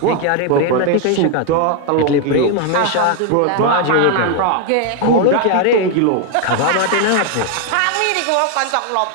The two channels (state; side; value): different; both; correlation 0.01